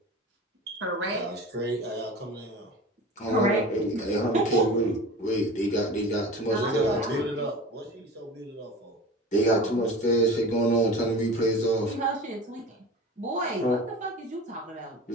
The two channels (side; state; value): both; normal; correlation 0.35